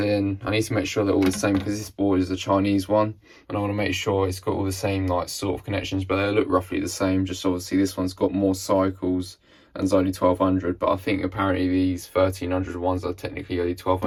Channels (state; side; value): identical; both; correlation 1.00